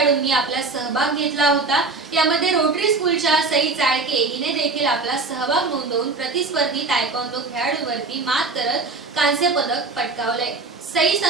आपला सहभाग घेतला होता. यामध्ये रोटरी स्कूलच्या सई चाळके हिने देखील आपला सहभाग नोंदवून प्रतिस्पर्धी तायक्वांदो खेळाडूंवरती मात करत कांस्य पदक पटकावलंय. सई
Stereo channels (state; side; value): quieter; left; 3.7 dB